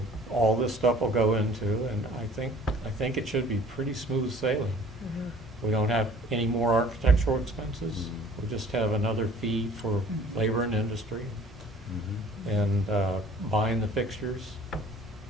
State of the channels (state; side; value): normal; both; correlation 0.51